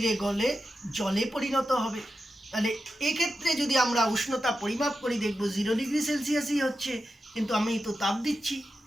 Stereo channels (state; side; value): normal; both; correlation 0.90